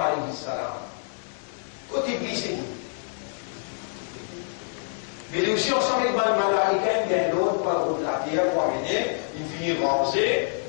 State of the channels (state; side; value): silent; right; digital silence